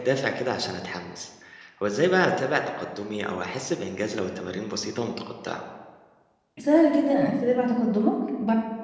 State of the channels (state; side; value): identical; both; correlation 1.00